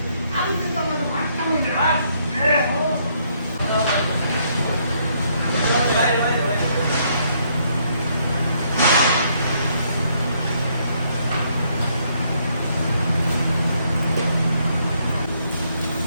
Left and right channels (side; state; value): both; inverted; correlation -0.71